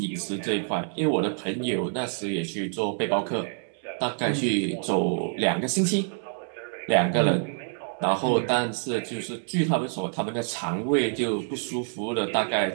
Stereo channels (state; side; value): silent; left; 60 dB below the other